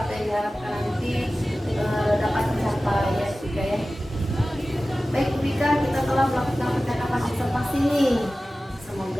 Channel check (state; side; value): normal; both; correlation 0.96